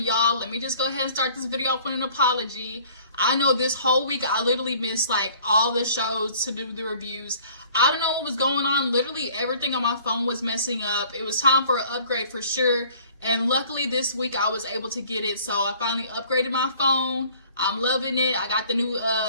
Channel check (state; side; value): inverted; both; correlation -0.53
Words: Let me just go ahead and start this video off with an apology. I know this whole week I literally missed like all the shows to do the reviews. I don't know what was going on. Literally everything on my phone was messing up. It was time for an upgrade for sure. And luckily this week I was able to get it. So I finally upgraded my phone. I'm loving it. I got the new,